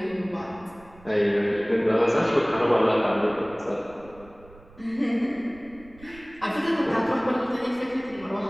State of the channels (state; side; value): noise; right; rumble, 23 dB below the sound